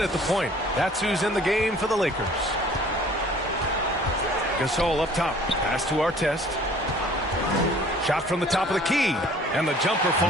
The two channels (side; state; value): both; normal; correlation 0.52